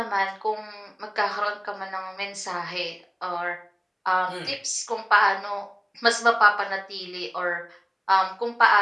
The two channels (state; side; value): identical; both; correlation 1.00